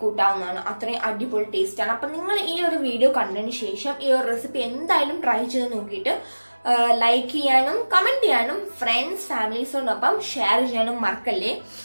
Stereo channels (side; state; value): both; inverted; correlation -1.00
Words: അത്രയും അടിപൊളി ടേസ്റ്റ് ആണ്. അപ്പൊ നിങ്ങൾ ഈ ഒരു വീഡിയോ കണ്ടതിന് ശേഷം ഈ ഒരു റെസിപ്പി എന്തായാലും ട്രൈ ചെയ്ത് നോക്കിയിട്ട് ലൈക്ക് ചെയ്യാനും കമന്റ് ചെയ്യാനും ഫ്രണ്ട്സ് ഫാമിലീസിനോടൊപ്പം ഷെയർ ചെയ്യാനും മറക്കല്ലേ.